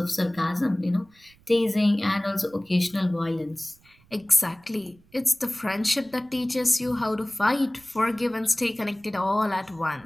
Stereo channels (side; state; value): right; noise; rumble, 30 dB below the sound